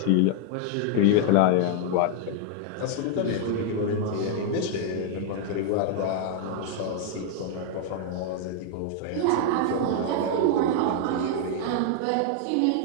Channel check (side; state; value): both; different; correlation 0.00